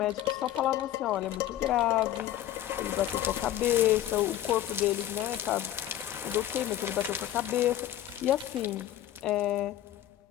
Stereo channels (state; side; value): quieter; right; 12.7 dB